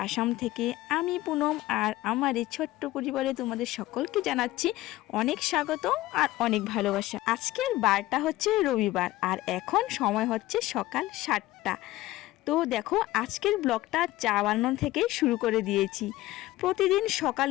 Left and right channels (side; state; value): right; quieter; 17.0 dB